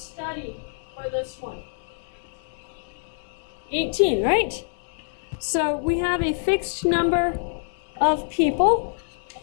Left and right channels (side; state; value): right; silent; 61 dB below the other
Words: for this one? 18, right? So we have a fixed number of people.